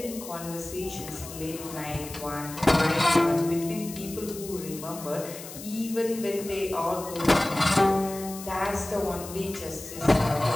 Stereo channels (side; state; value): left; noise; hiss, 13 dB below the sound